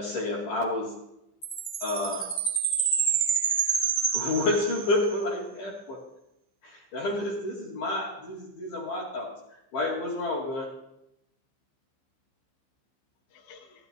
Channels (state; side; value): late; right; 15 ms